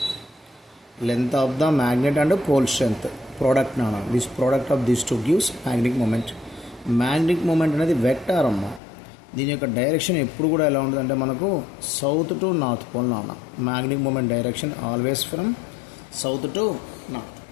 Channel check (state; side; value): drops out; right; at 8.8 s